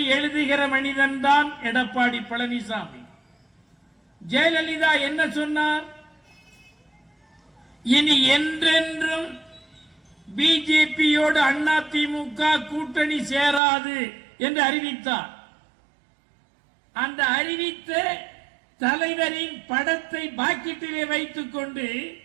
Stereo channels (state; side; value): drops out; left; at 13.6 s